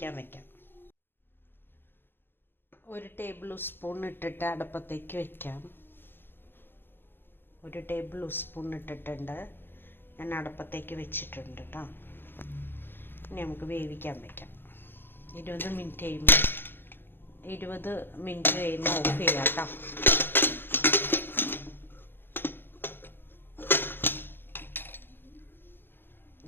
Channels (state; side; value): late; right; 0.10 ms